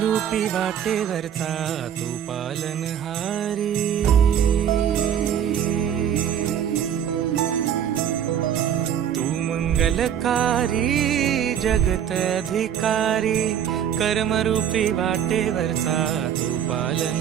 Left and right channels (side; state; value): left; quieter; 9.2 dB